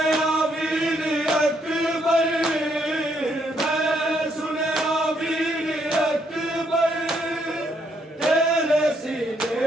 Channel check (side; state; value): both; normal; correlation 0.73